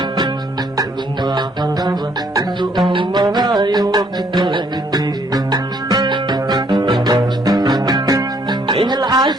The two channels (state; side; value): normal; both; correlation 0.66